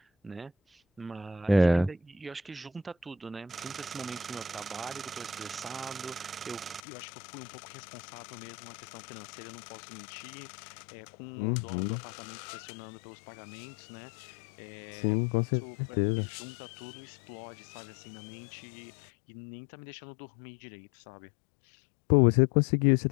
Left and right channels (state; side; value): drops out; right; at 6.8 s